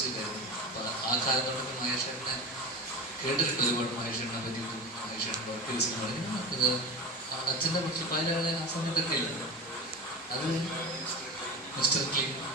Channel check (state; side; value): normal; both; correlation 0.28